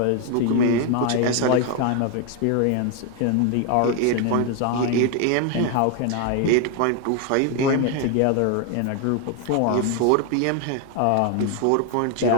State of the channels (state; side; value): different; both; correlation 0.01